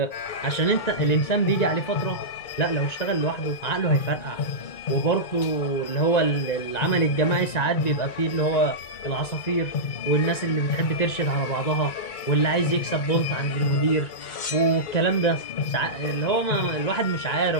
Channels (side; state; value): right; late; 1.9 ms